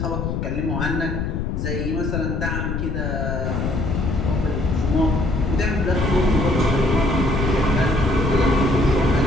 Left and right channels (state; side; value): noise; left; rumble, 2 dB below the sound